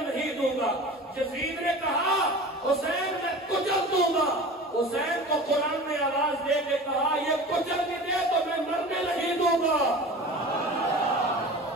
نہیں دوں گا. یزید نے کہا حسین میں کچل دوں گا. حسین کو قرآن نے آواز دے کے کہا یہ کچل بھی دے تو میں مرنے نہیں دوں گا.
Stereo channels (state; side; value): normal; both; correlation 0.37